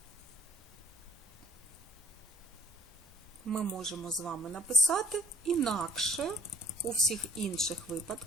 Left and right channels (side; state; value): both; normal; correlation 0.55